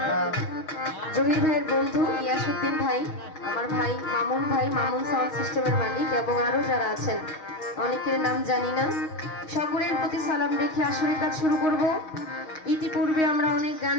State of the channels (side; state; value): right; late; 6.3 ms